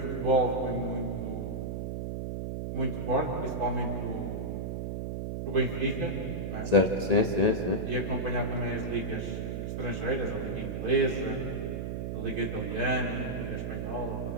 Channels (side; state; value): right; noise; hum, 3 dB below the sound